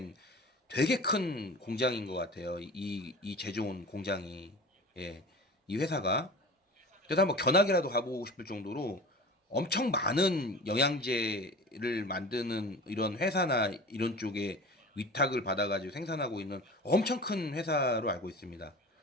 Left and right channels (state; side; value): normal; both; correlation 0.37